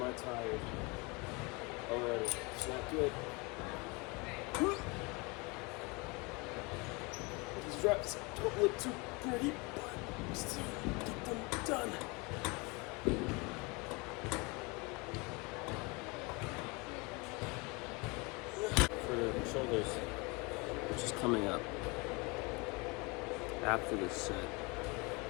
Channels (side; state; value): right; quieter; 27.5 dB